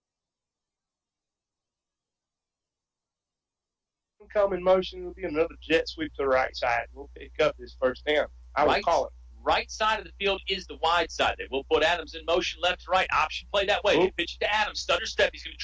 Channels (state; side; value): identical; both; correlation 1.00